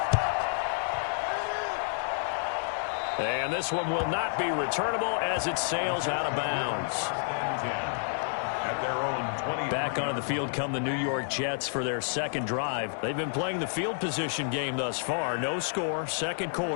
And this one will not be returnable as it sails out of bounds. At their own 20. Back onto the field come the New York Jets for their second drive. They've been playing the field position game thus far. No score, second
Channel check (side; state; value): right; silent; 58 dB below the other